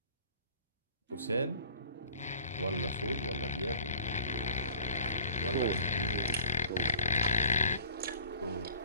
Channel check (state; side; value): inverted; both; correlation -0.48